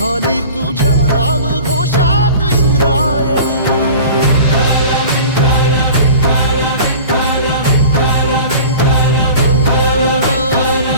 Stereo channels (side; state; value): both; inverted; correlation -0.39